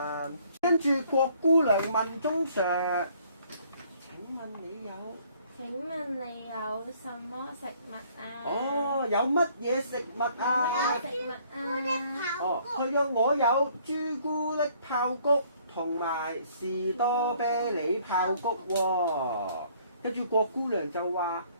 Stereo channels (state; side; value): inverted; both; correlation -0.61